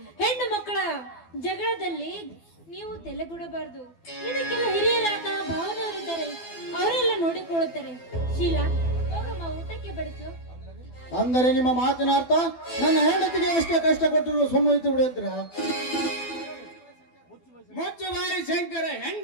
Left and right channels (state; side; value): late; right; 12 ms